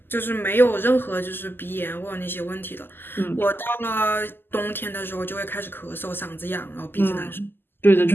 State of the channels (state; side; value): late; right; 0.099 ms